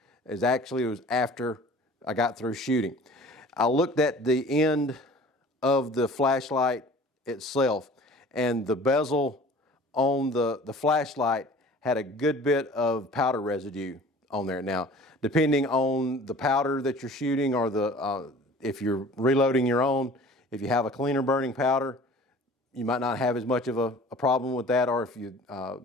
is actually it was after I got through shooting. I looked at the end of the flashlight itself, and the bezel on the flashlight had a good bit of powder residue on there. Now, depending on the powder that you're shooting, or if you're reloading your own, if you have a cleaner burning powder, you might not have as much of a problem with that. Or if you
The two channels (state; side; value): normal; both; correlation 0.46